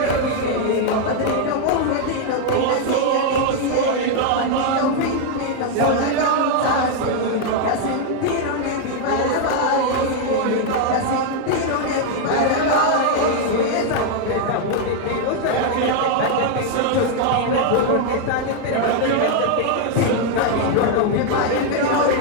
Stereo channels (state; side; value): different; both; correlation 0.00